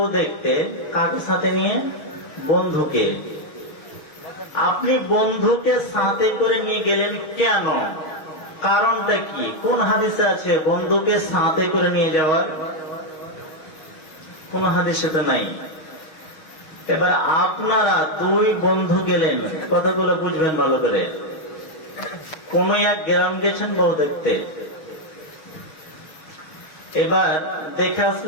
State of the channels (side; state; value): right; late; 6.4 ms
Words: দেখতে কাকে সাথে নিয়ে? বন্ধুকে। আপনি বন্ধুকে সাথে করে নিয়ে গেলেন কেন? কারণটা কি? কোন হাদিসে আছে বন্ধুকে সাথে করে নিয়ে যাওয়ার? কোন হাদিসে তো নাই। এবার আপনারা দুই বন্ধু গেলেন, কথাগুলো বুঝবেন ভালো করে। কোন এক গ্রাম গেছেন বউ দেখতে, এবার দেখে